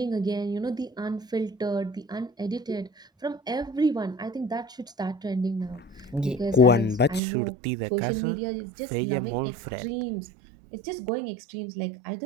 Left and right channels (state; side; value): drops out; left; at 7.2 s